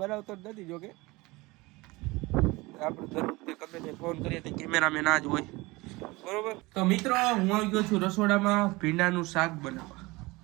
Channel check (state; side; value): quieter; left; 22.5 dB